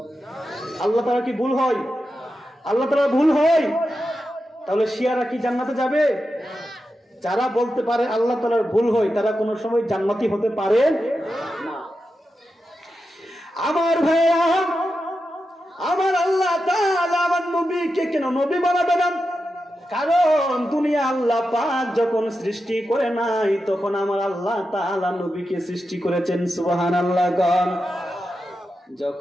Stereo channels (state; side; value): normal; both; correlation 0.89